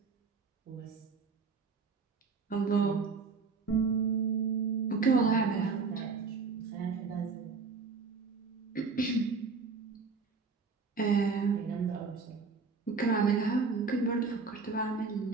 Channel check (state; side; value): quieter; left; 4.7 dB